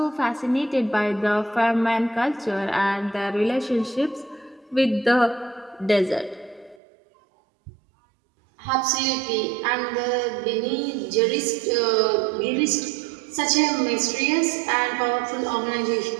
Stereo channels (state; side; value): drops out; left; at 6.8 s